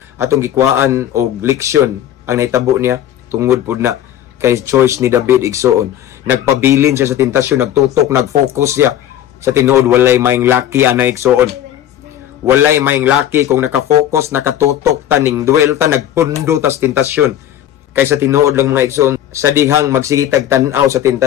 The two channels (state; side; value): quieter; right; 11.5 dB